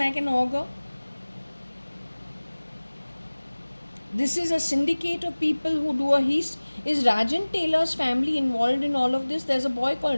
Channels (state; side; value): inverted; both; correlation -1.00